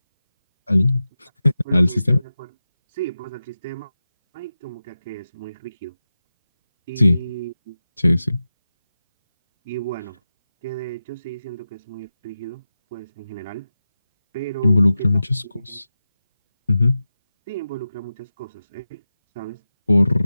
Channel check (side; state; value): both; inverted; correlation -0.92